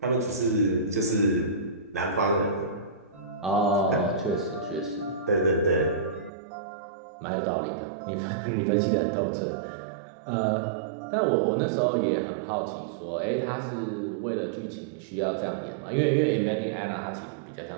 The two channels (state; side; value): drops out; left; at 6.3 s